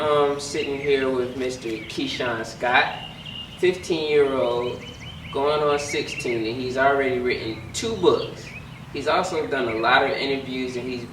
sitting here with Mr. Keishan Scott, 15-year-old, going on 16, and he's already written 2 books. He's also done a lot of interviews, and he's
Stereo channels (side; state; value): both; identical; correlation 1.00